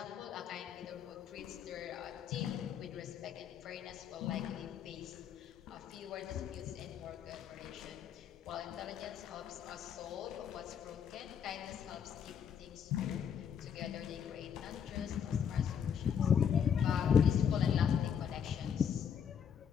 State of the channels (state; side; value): quieter; right; 7.9 dB